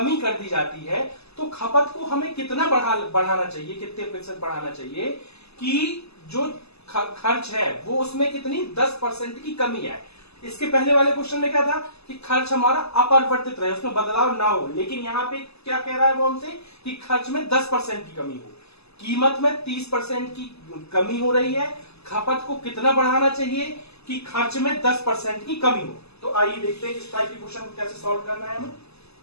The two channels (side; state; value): right; late; 0.79 ms